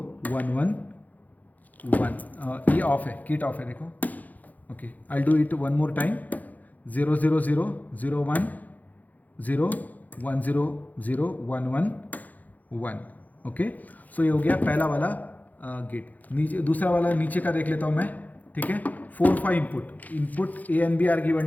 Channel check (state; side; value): late; right; 0.080 ms